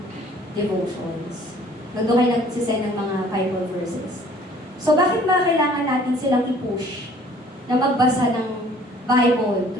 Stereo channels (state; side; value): normal; both; correlation 0.54